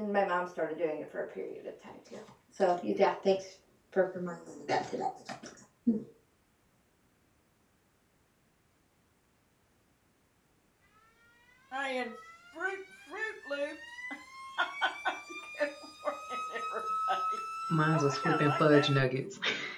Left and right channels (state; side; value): identical; both; correlation 1.00